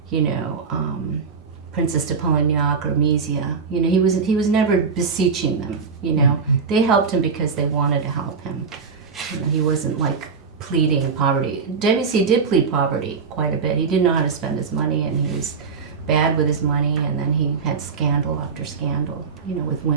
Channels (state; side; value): quieter; left; 5.3 dB